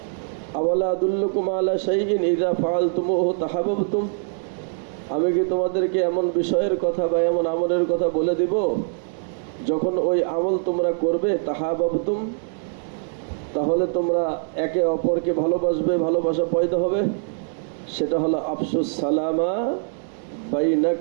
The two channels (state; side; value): silent; left; digital silence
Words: আওয়ালা আদুল্লুকুম আলা শাইইন ইযা ফাআলতুমুহু তাহাব্বাবতুম, আমি কি তোমাদেরকে এমন বিষয়ের কথা বা এমন আমলের কথা বলে দিব যখন ওই আমল তোমরা করবে তাহাব্বাবতুম, তাহলে তোমরা একে অপরকে ভালোবাসবে, ভালোবাসা পয়দা হবে। সেটা হলো আফসুস সালামা